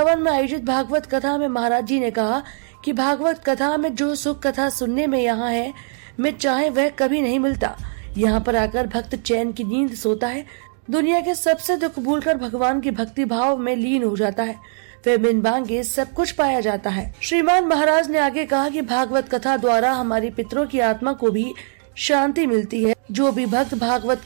में आयोजित भागवत कथा में महाराज जी ने कहा कि भागवत कथा में जो सुख कथा सुनने में यहाँ है, में चाहे वह कभी नहीं मिलता। यहाँ पर आकर भक्त चैन की नींद सोता है, दुनिया के सबसे दुख भूलकर भगवान की भक्ति भाव में लीन हो जाता है, फिर बिन मांगे सब कुछ पाया जाता है। श्रीमान महाराज ने आगे कहा कि भागवत कथा द्वारा हमारी पितरों की आत्मा को भी शांति मिलती है। जो भी भक्त भागवत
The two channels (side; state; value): left; silent; digital silence